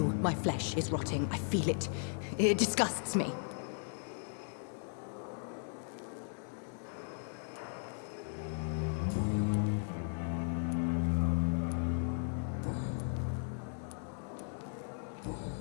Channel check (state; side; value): silent; right; 53 dB below the other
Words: my flesh is rotting. I feel it. It disgusts me.